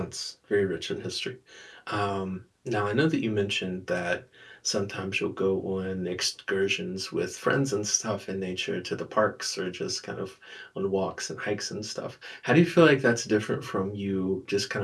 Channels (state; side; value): identical; both; correlation 1.00